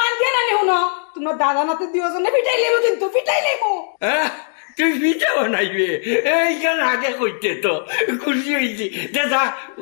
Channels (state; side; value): silent; right; digital silence